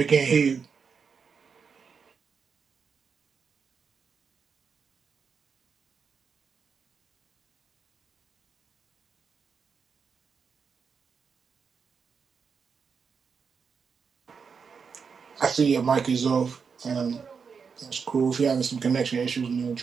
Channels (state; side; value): quieter; left; 5.9 dB